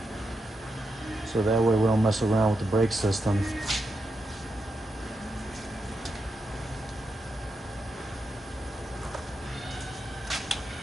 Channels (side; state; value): both; normal; correlation 0.86